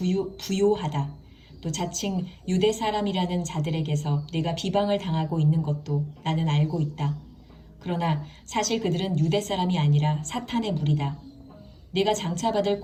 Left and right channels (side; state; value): both; identical; correlation 1.00